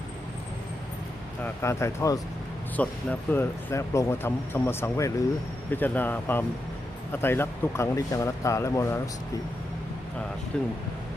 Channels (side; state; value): both; normal; correlation 0.86